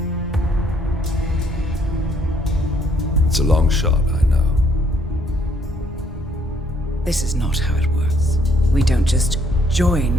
It's a long shot, I know. This is not how it works. We don't just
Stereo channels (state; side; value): normal; both; correlation 0.67